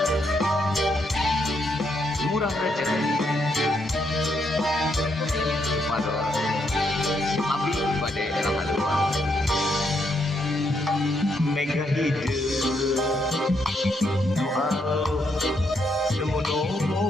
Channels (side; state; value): both; normal; correlation 0.77